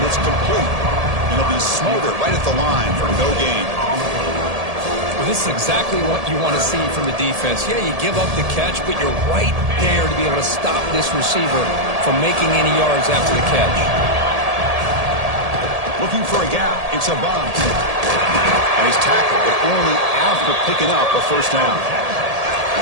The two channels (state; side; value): late; left; 1.8 ms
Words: it's complete. And it'll be smothered right at the line for no gain. Well, this is exactly what you want to see from the defense. Yeah, you give up the catch, but you're right there to be able to stop this receiver from making any yards after the catch. Looking for a gap. It's a bomb. And he's tackled, but only after picking up a first down.